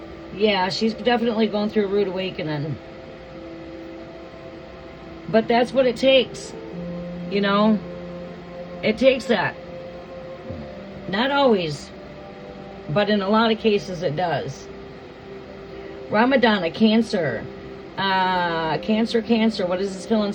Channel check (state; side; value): identical; both; correlation 1.00